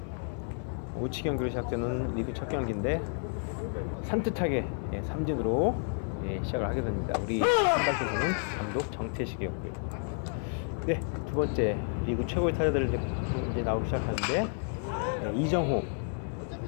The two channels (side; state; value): right; silent; 57 dB below the other